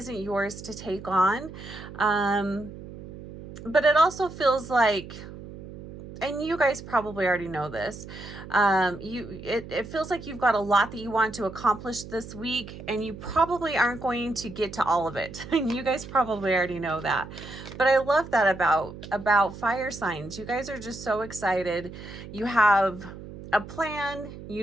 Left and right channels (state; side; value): noise; right; hum, 13 dB below the sound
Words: yours to take on. But it also feels like, and you guys probably already know this, it feels like you've got a lot that you want to accomplish this week, and you probably aren't going to get to all of it. And you guys probably already know that. But I love that about fire signs. You guys are just so excited. You have a plan. You